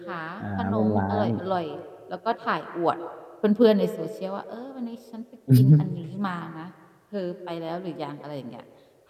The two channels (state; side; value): identical; both; correlation 1.00